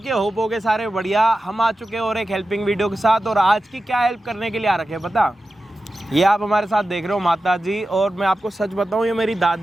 होप होगे सारे बढ़िया। हम आ चुके हैं और एक हेल्पिंग वीडियो के साथ। और आज की क्या हेल्प करने के लिए आ रखे हैं पता? ये आप हमारे साथ देख रहे हो माता जी। और मैं आपको सच बताऊं, ये मेरी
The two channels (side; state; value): both; normal; correlation 0.93